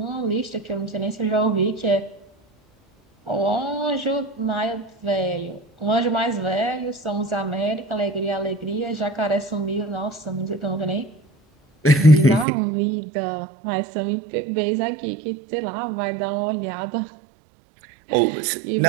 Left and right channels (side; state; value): left; drops out; at 12.5 s